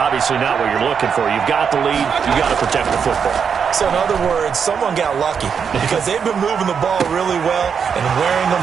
not what you're looking for. You've got the lead. You've got to protect the football. So in other words, someone got lucky because they've been moving the ball really well and wearing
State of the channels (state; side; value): quieter; left; 6.7 dB